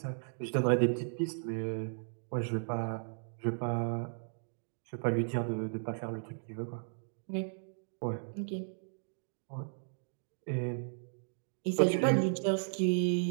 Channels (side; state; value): left; silent; digital silence